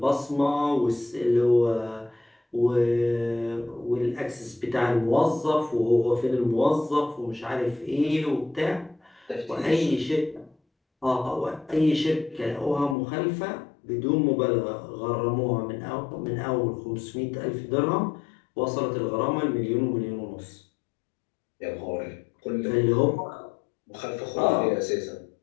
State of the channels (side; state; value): right; drops out; at 13.0 s